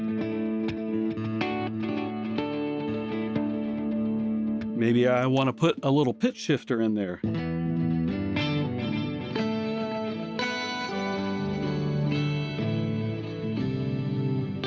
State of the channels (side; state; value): both; identical; correlation 1.00